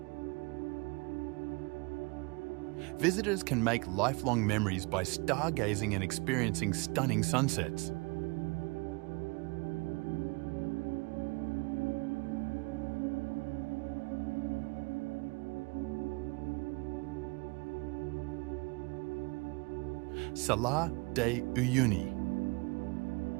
Visitors can make lifelong memories by stargazing and experiencing stunning sunsets. Salar de Uyuni.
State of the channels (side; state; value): left; quieter; 28.4 dB